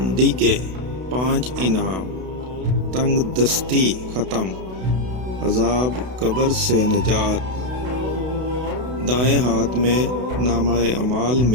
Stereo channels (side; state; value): left; late; 32 ms